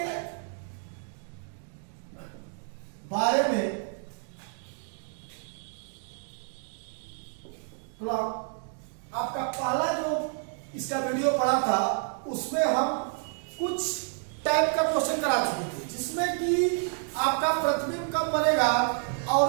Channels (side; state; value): left; silent; 56 dB below the other